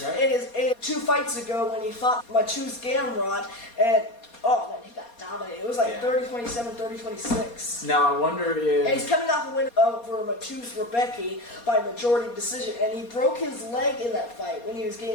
right? in 2 fights ago when he fought Mateusz Gamrot, and oh man, he got dominated. It was like 30-27, 30-26. Now I wonder if... And he's coming off a win over Mateusz Rębecki by majority decision, and he broke his leg in that fight when he was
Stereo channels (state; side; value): late; right; 4.2 ms